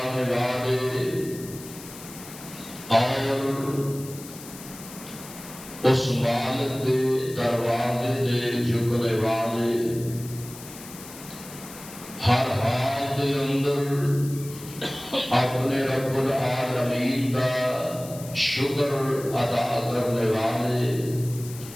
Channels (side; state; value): left; noise; hiss, 15 dB below the sound